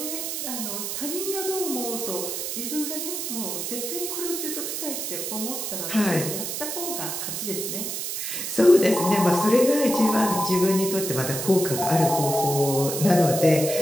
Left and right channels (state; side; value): noise; right; hiss, 4 dB below the sound